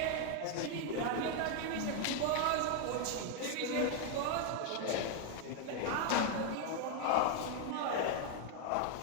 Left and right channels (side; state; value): both; different; correlation 0.01